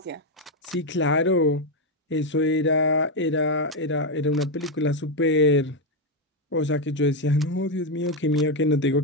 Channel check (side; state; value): both; normal; correlation 0.05